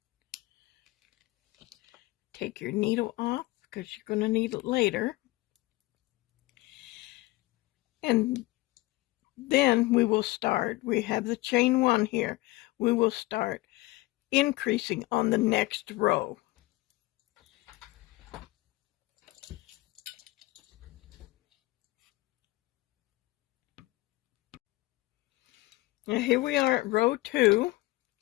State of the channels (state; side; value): quieter; right; 20.2 dB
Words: Take your needle off because you're going to need it later. And then we will start. We have the chain 1 here. We will start increasing on the next row. Now here we are at row 2,